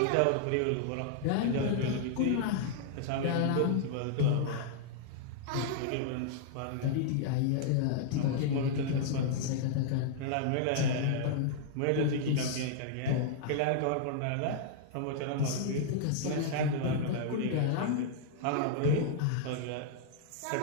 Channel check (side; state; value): both; different; correlation -0.01